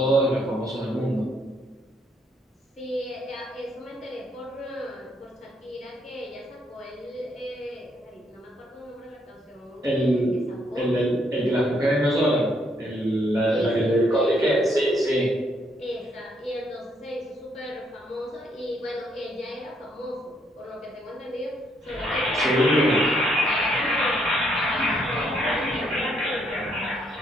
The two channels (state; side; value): normal; both; correlation 0.72